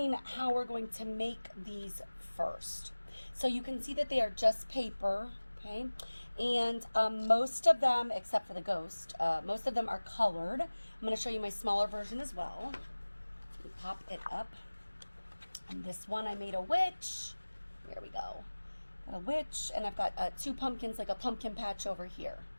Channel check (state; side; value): inverted; both; correlation -1.00